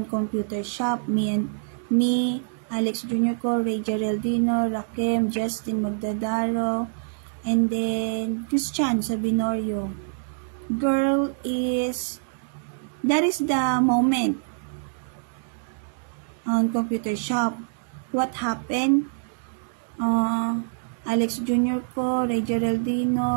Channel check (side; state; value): left; silent; digital silence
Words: computer shop. Me, Alex Jr. ko, Ray Geraldino, Rakem, Justin Magdadaro, and then Christian Sabinorio. Girl is, that is the moment on computer shop. What happened? Alex Jr. ko, Ray